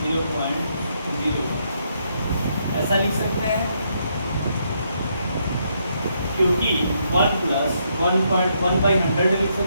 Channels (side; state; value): both; inverted; correlation -0.76